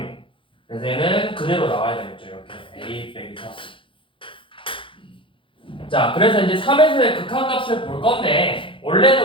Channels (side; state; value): right; late; 0.25 ms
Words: 그래서 얘는 그대로 나와야 되겠죠. 이렇게 A 빼기 3. 자, 그래서 이제 3에서의 극한값을 볼 건데,